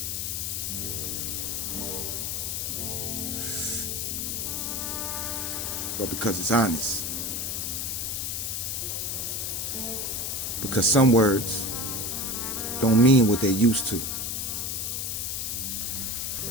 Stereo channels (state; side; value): noise; left; hiss, 2 dB below the sound